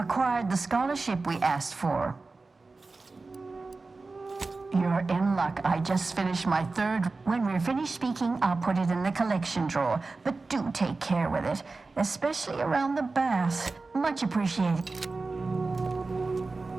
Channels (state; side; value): quieter; left; 3.7 dB